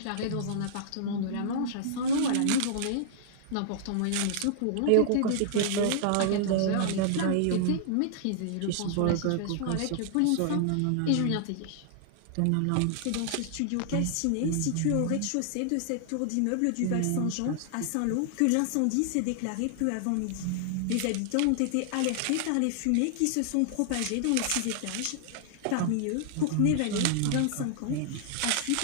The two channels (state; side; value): different; both; correlation -0.01